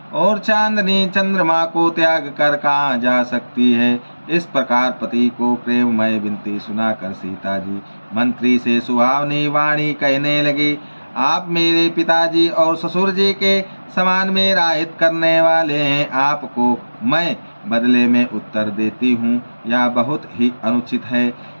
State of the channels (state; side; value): inverted; both; correlation -1.00